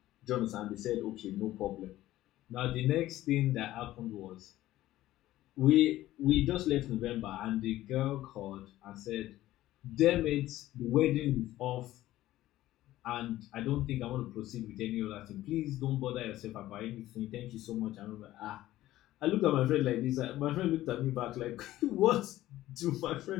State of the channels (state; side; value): quieter; right; 15.1 dB